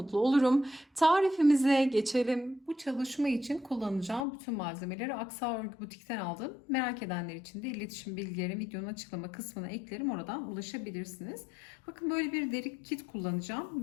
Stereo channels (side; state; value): right; drops out; at 4.2 s